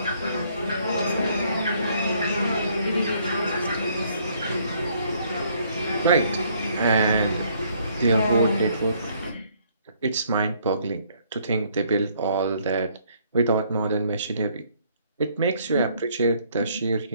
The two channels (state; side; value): inverted; both; correlation -0.65